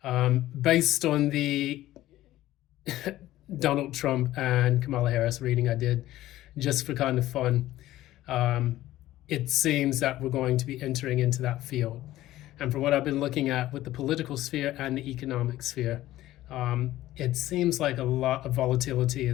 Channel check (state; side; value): quieter; right; 15.1 dB